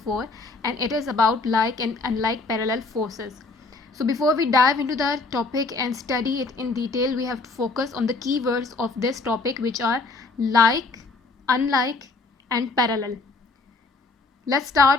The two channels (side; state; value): right; quieter; 3.7 dB